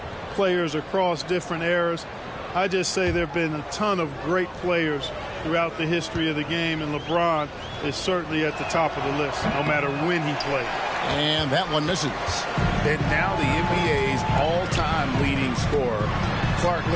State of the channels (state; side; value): identical; both; correlation 1.00